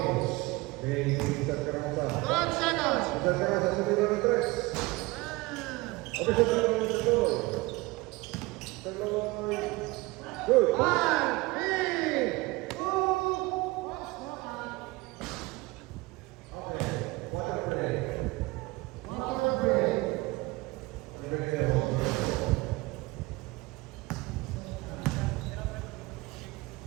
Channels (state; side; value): quieter; left; 22.4 dB